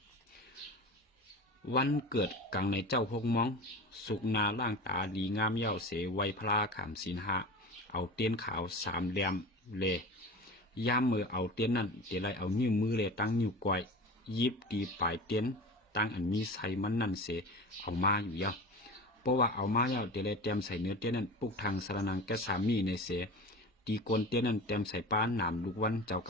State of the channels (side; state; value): both; normal; correlation 0.32